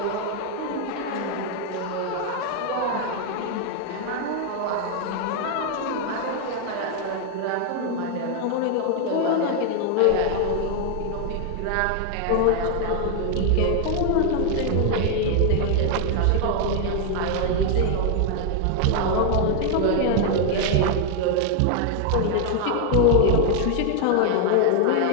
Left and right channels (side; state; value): both; different; correlation 0.00